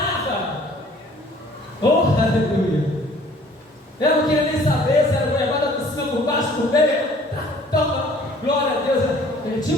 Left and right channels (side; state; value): both; normal; correlation 0.54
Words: Oh, aleluia. Eu não queria nem saber se era goiabada por cima, por baixo, por meio. Toma, glória a Deus.